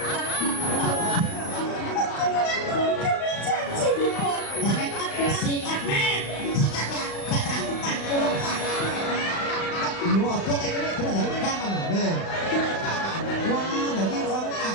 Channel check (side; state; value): right; late; 35 ms